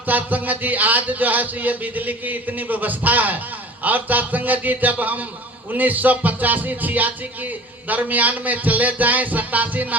संगत जी आज जो है सो ये बिजली की इतनी व्यवस्था है। और साध संगत जी जब हम 1985-86 की दरमियान में चले जाएं,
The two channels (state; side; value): normal; both; correlation 0.42